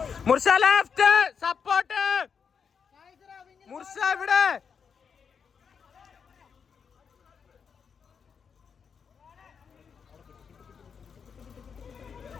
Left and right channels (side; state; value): right; quieter; 6.4 dB